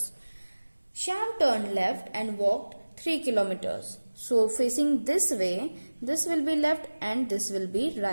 Shyam turned left and walked 3 kilometers. So facing this way, this will be left and this will be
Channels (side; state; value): both; inverted; correlation -1.00